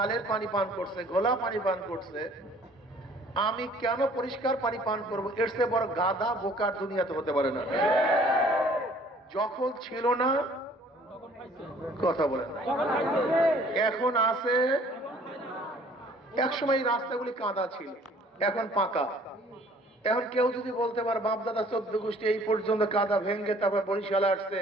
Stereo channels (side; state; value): both; normal; correlation 0.55